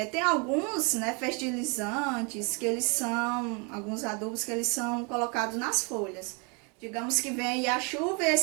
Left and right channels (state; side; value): quieter; left; 33.5 dB